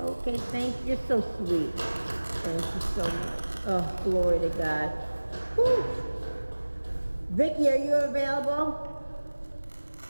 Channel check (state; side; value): inverted; both; correlation -1.00